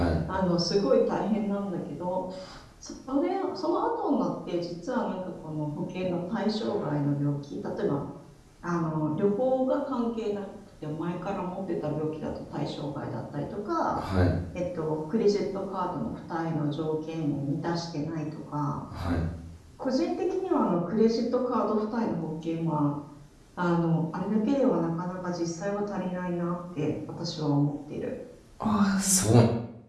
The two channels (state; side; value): identical; both; correlation 1.00